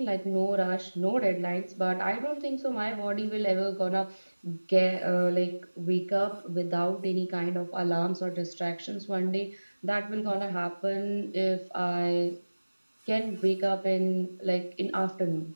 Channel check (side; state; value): both; inverted; correlation -1.00